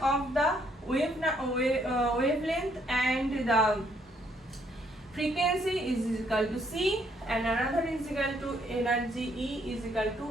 of the wavelength and the frequency is equal to c, and another is equal to energy E is equal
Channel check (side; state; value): both; normal; correlation 0.70